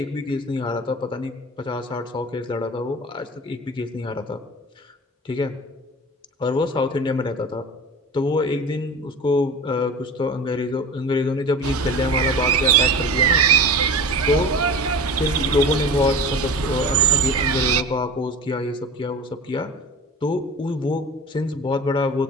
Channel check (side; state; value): both; normal; correlation 0.34